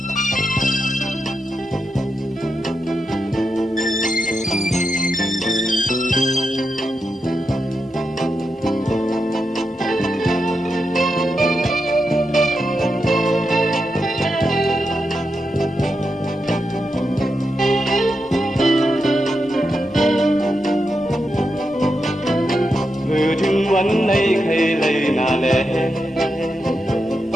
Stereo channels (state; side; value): normal; both; correlation 0.87